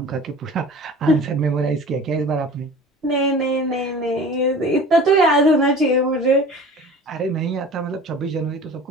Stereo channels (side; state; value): both; normal; correlation 0.41